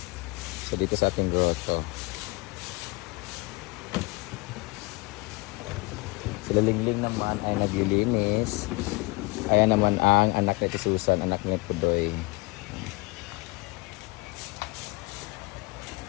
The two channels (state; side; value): quieter; right; 25.2 dB